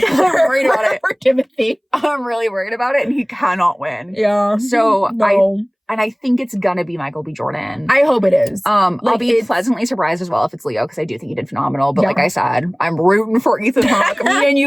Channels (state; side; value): identical; both; correlation 1.00